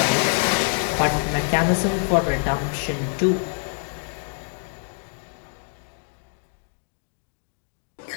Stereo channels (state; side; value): silent; right; 62 dB below the other